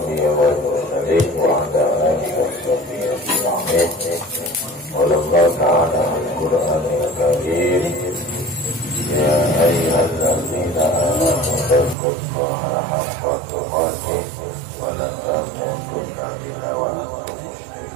wal mursalin wa ala alihi washabbihi ajma'in. Allah ta'ala al-Qur'anil Karim. Ya ayyuhalladzina amanu taqullaha haqqa tuqatih wa la tamutunna illa wa antum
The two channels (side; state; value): left; drops out; at 12.0 s